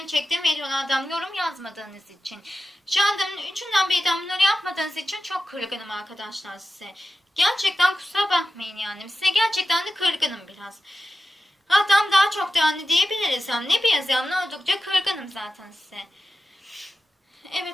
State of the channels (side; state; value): both; normal; correlation 0.93